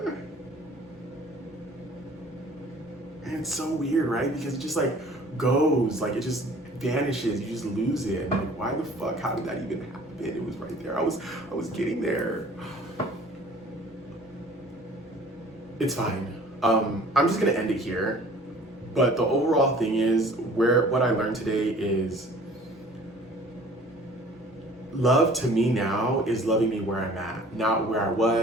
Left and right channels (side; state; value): both; normal; correlation 0.50